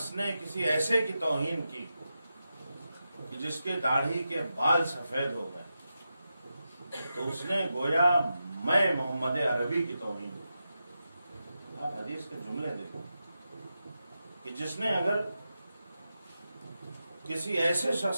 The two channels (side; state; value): both; inverted; correlation -0.89